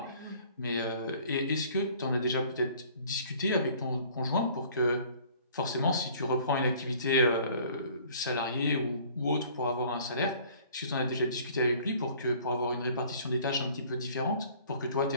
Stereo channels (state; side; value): inverted; both; correlation -0.53